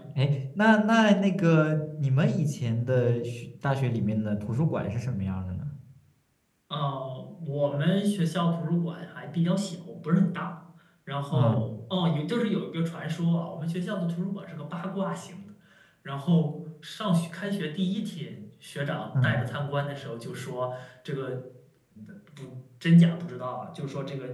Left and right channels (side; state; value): both; identical; correlation 1.00